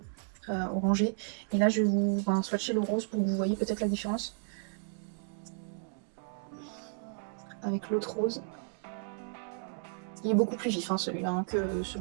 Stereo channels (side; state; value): left; silent; digital silence